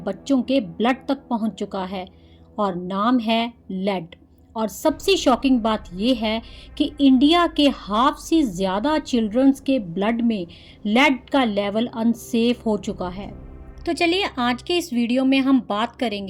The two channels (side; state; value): both; identical; correlation 1.00